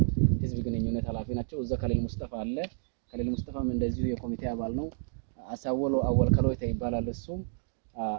ህዝብ ግንኙነት ኃላፊ ናቸው። እዛ ከሊል ሙስጠፋ አለ። ከሊል ሙስጠፋም እንደዚሁ የኮሚቴ አባል ነው። አሳወሎ አወል ከሎይታ ይባላል። እሱም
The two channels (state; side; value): silent; left; digital silence